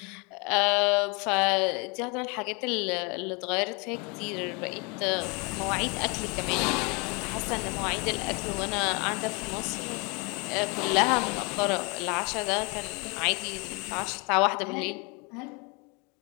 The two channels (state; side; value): quieter; right; 30.8 dB